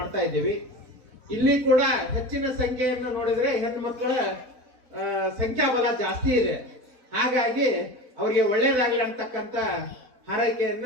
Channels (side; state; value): left; late; 4.0 ms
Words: ಇದ್ದೀವಿ. ಇಲ್ಲಿ ಕೂಡ ಹೆಚ್ಚಿನ ಸಂಖ್ಯೆಯನ್ನು ನೋಡಿದ್ರೆ ಹೆಣ್ಣು ಮಕ್ಕಳ ಸಂಖ್ಯಾಬಲ ಜಾಸ್ತಿ ಇದೆ. ಹಾಗಾಗಿ ಅವರಿಗೆ ಒಳ್ಳೇದಾಗಲಿ ಅಂತಕ್ಕಂಥ ಹಾರೈಕೆಯನ್ನ